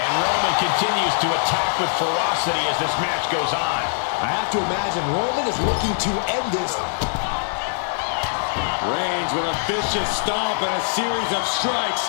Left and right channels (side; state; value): right; silent; digital silence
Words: Roman continues to attack with ferocity as this match goes on. I have to imagine Roman is looking to end this. Reigns with a vicious stomp and a series of